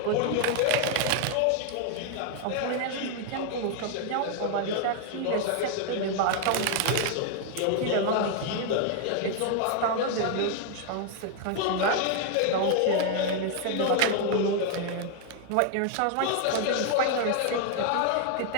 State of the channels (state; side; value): different; both; correlation 0.00